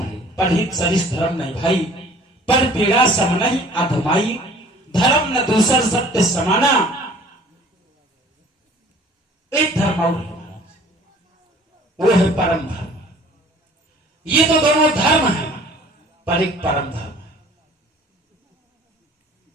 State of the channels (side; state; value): both; normal; correlation 0.50